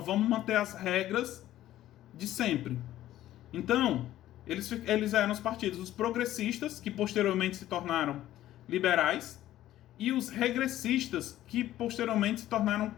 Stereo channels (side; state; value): right; quieter; 13.7 dB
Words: vamos manter as regras de sempre. Então, eles eram os partidos, os progressistas, que posteriormente se tornaram liberais, e os regressistas, que posteriormente se tornaram